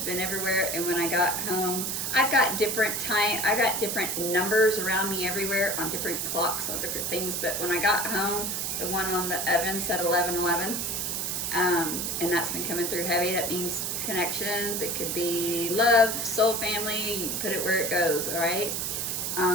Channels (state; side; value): noise; right; hiss, 1 dB below the sound